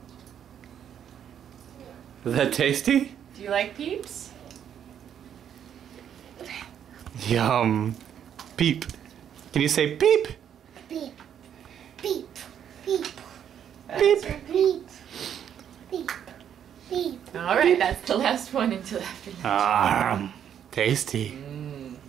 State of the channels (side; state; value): left; quieter; 9.1 dB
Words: Is that tasty? Do you like peeps? Yum. Peep. Can you say peep? Peep. Peep. Peep. Peep. Peep. Peep. Peep. All right, that's the last one until after lunch. Tasty.